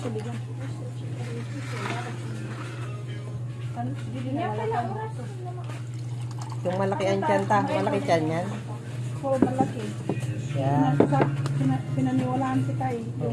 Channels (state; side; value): identical; both; correlation 1.00